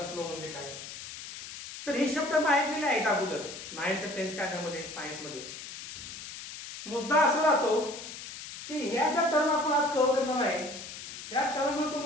फ्लो म्हणजे काय. तर हे शब्द ऐकलेले आहेत अगोदर 9th 10th स्टँडर्डमध्ये सायन्समध्ये. मुद्दा असा राहतो की ह्या ज्या टर्म आपण आज कव्हर करणार आहे त्या टर्म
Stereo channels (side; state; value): left; noise; hiss, 11 dB below the sound